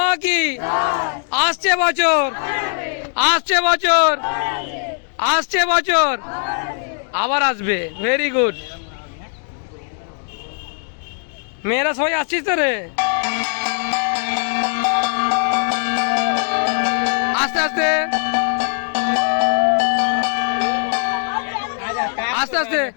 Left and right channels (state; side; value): silent; right; 64 dB below the other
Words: কি। আসছে বছর, আসছে বছর, আসছে বছর, আবার আসবে। Very good. মেয়েরা সবাই আসছিস তো রে? আস্তে আস্তে আস্তে আস্তে